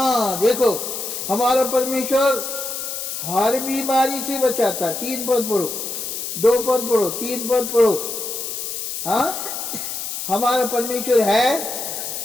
देखो हमारा परमेश्वर हर बीमारी से बचाता। 3 पद पढ़ो, 2 पद पढ़ो, 3 पद पढ़ो। हाँ हमारा परमेश्वर है,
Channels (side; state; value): left; noise; hiss, 5 dB below the sound